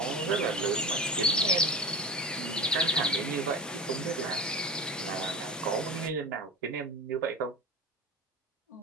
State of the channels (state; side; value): normal; both; correlation 0.30